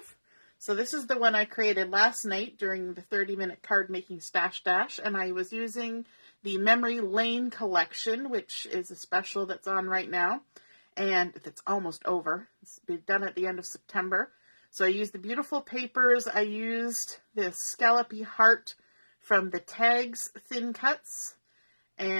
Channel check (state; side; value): inverted; both; correlation -1.00